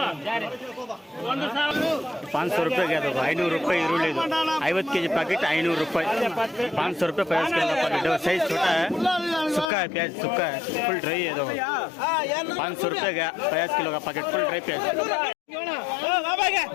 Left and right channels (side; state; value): right; drops out; at 9.7 s